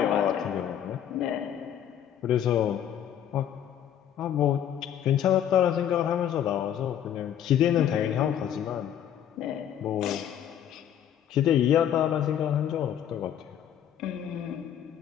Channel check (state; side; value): quieter; right; 10.0 dB